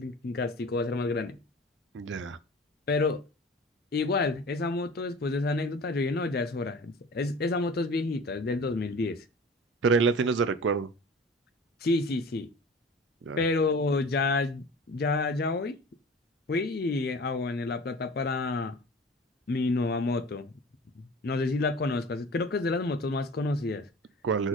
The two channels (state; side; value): normal; both; correlation 0.40